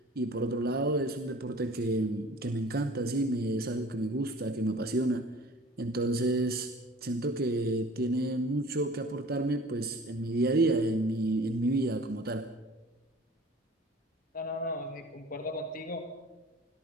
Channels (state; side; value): normal; both; correlation 0.45